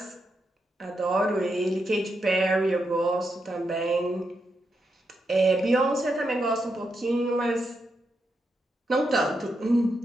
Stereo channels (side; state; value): both; normal; correlation 0.84